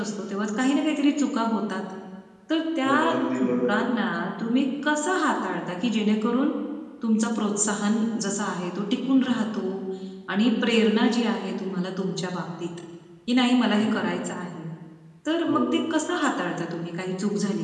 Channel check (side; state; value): both; identical; correlation 1.00